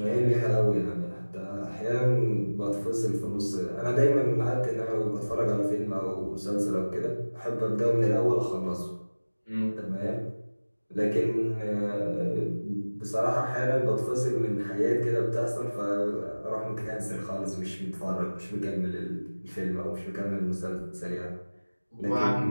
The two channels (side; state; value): both; inverted; correlation -1.00